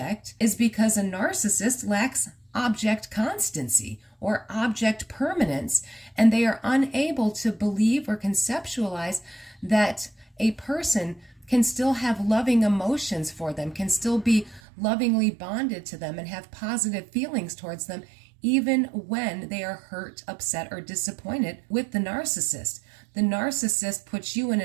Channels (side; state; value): left; drops out; at 14.6 s